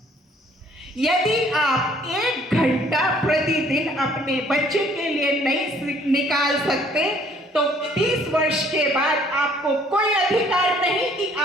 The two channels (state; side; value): normal; both; correlation 0.60